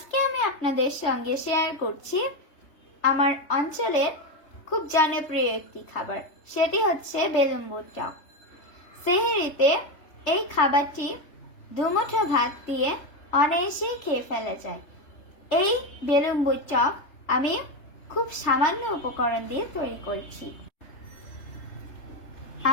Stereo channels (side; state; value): right; late; 3.3 ms